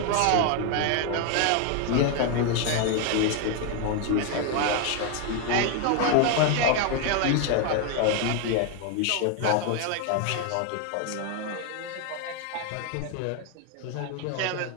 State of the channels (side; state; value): both; different; correlation 0.01